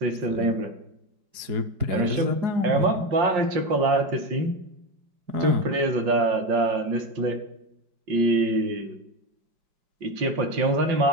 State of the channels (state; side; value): late; left; 4.9 ms